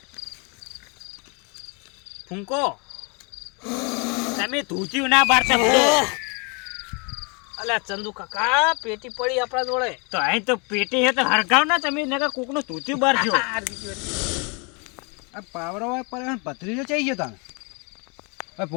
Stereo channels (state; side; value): quieter; right; 32.8 dB